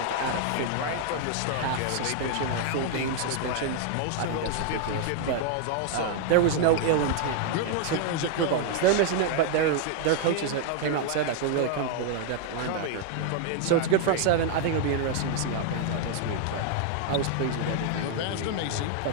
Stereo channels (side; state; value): both; different; correlation 0.00